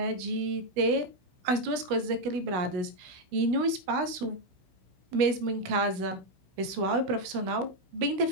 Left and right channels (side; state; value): left; late; 16 ms